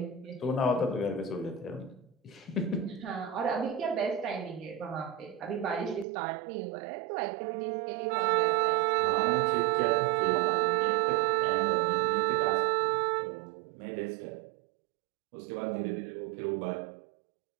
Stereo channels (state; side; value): drops out; left; at 6.1 s